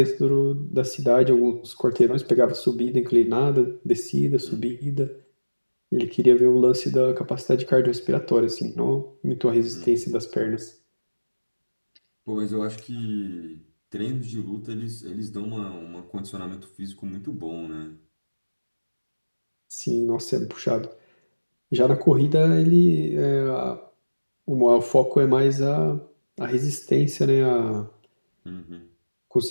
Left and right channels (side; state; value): both; inverted; correlation -1.00